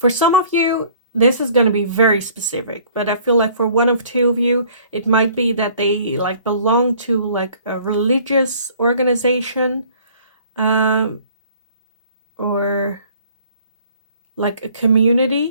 some of you, this is going to be very specific, but I feel like for one of two of you, it might be that they like belong to like a religious organization, or like a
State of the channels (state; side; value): inverted; both; correlation -0.54